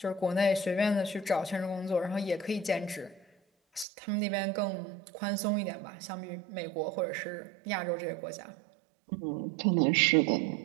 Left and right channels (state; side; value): drops out; left; at 3.9 s